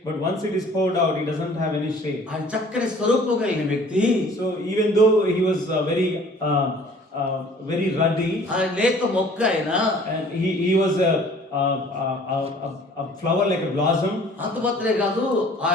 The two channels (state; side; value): normal; both; correlation 0.52